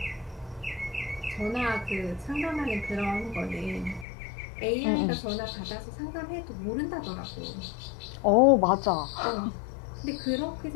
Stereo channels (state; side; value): drops out; right; at 4.0 s